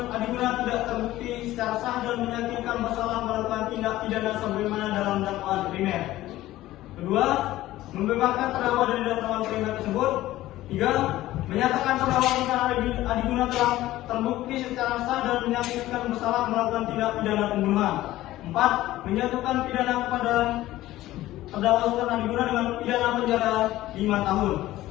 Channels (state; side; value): quieter; right; 15.7 dB